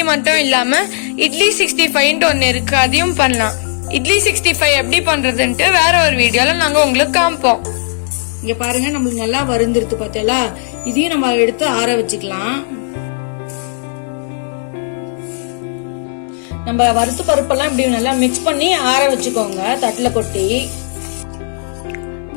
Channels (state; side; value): silent; right; digital silence